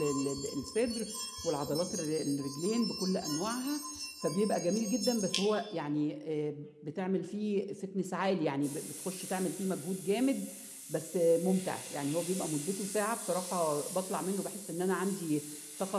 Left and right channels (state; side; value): identical; both; correlation 1.00